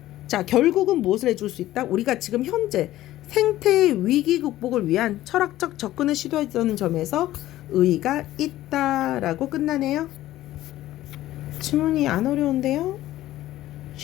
자, 결국은 무엇을 해줄 수 있다? 우리가 지금 현재 생태의 위기 극복을 위한 철학적 접근을 시도했다는 점에서 의의가 있다라고 끝나네요. 질문이 안 어려운데요?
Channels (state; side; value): quieter; right; 14.8 dB